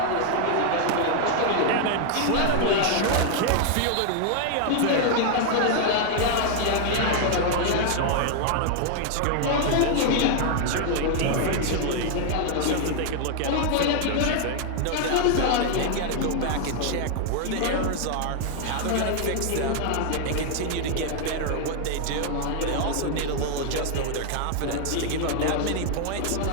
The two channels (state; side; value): different; both; correlation 0.00